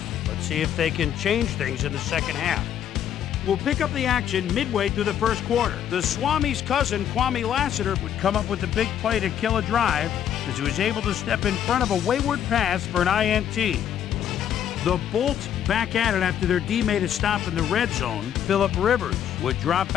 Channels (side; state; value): right; quieter; 9.9 dB